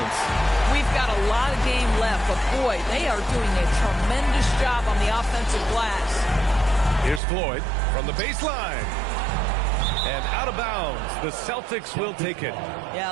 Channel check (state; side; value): drops out; left; at 7.2 s